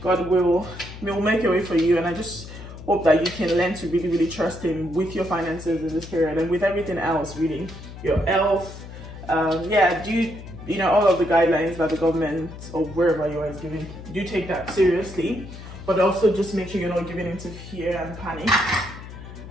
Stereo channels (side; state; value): left; noise; hum, 13 dB below the sound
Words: will make a way for you, and I just hope that you can learn to really trust Him with your finances in this period and with everything else, really, your health. Yeah, you know, all of the guidelines that the government or wherever you are is giving, do take that seriously, but also just make sure you're not giving into fear and panic,